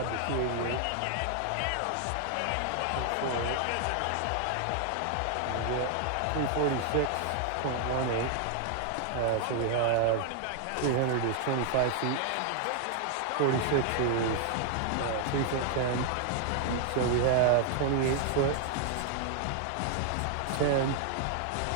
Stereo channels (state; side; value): different; both; correlation 0.00